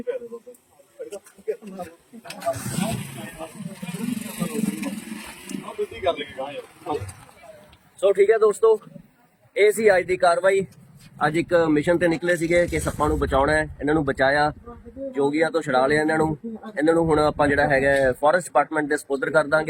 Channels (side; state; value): both; identical; correlation 1.00